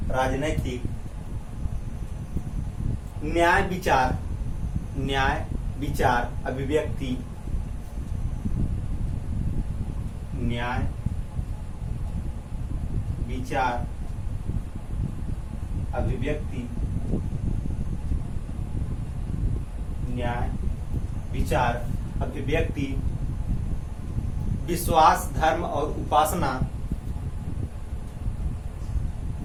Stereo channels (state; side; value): identical; both; correlation 1.00